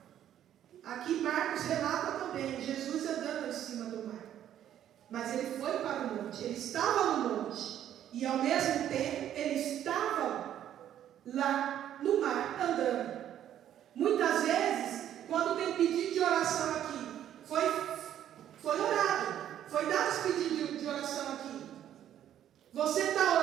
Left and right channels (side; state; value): left; quieter; 10.9 dB